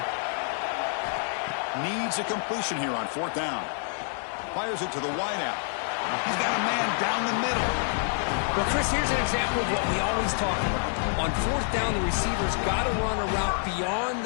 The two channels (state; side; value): silent; right; 60 dB below the other